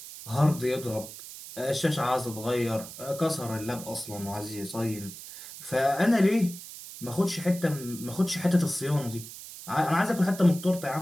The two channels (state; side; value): noise; right; hiss, 13 dB below the sound